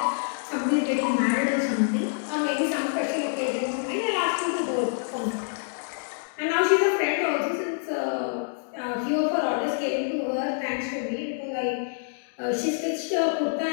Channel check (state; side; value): silent; right; digital silence